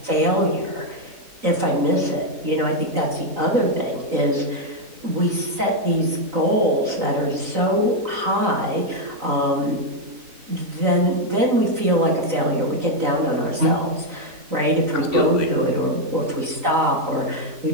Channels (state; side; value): late; left; 3.9 ms